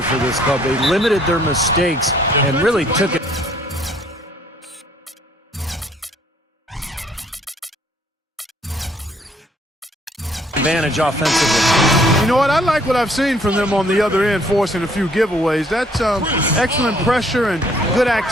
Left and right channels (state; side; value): normal; both; correlation 0.63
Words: for this club. They limited their mistakes and really took it. Advantage offensively. You know what? I like what I've seen from them on the other end, forcing a few giveaways. That's excellent pressure and good